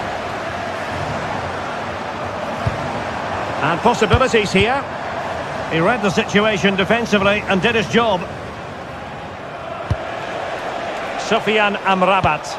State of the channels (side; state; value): both; identical; correlation 1.00